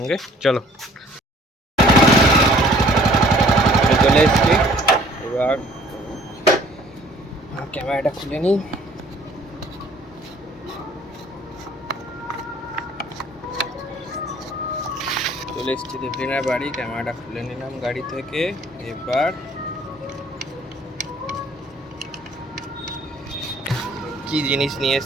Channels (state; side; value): normal; both; correlation 0.55